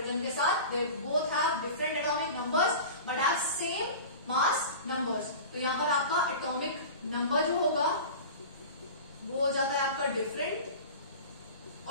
के साथ। They both have different atomic numbers but have same mass numbers. तो यहाँ पर आपका एटॉमिक नंबर जो होगा वो हो जाता है आपका डिफरेंट,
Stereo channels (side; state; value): both; inverted; correlation -0.35